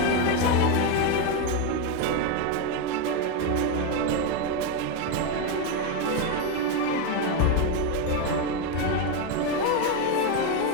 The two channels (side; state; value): both; different; correlation 0.03